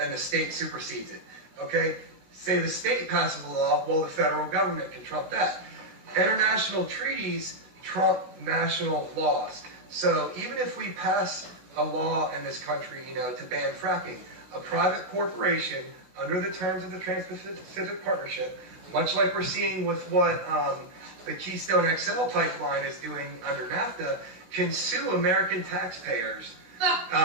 the state supersedes it, okay? Say the state passes a law, well, the federal government can trump that. International treaties trump national laws. So even if we pass a law in this country, to ban fracking, a private corporation, under the terms of the Trans-Pacific Partnership, much like we're seeing with what the Keystone XL pipeline is doing under NAFTA, can sue American taxpayers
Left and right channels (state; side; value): late; left; 16 ms